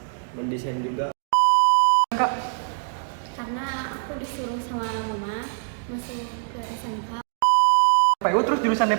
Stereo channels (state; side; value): silent; left; digital silence